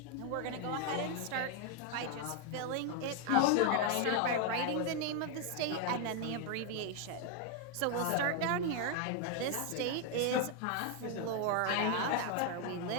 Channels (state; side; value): different; both; correlation 0.01